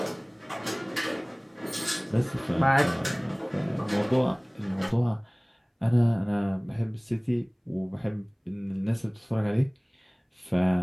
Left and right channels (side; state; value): both; identical; correlation 1.00